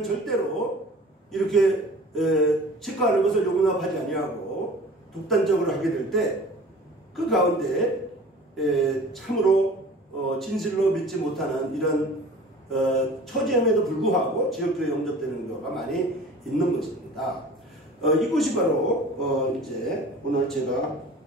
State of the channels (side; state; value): both; normal; correlation 0.43